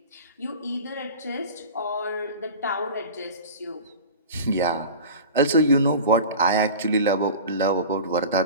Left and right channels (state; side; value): inverted; both; correlation -0.34